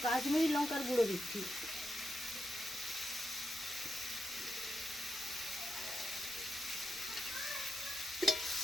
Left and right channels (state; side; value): normal; both; correlation 0.85